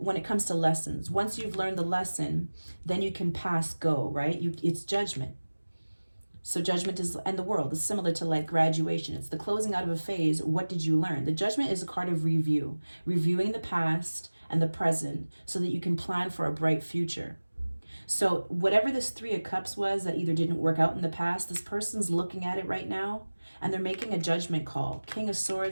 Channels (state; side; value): inverted; both; correlation -1.00